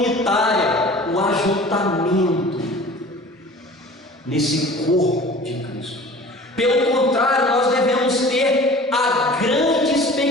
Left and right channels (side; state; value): both; normal; correlation 0.43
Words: o ajuntamento nesse corpo de Cristo. Pelo contrário, nós devemos ter a grande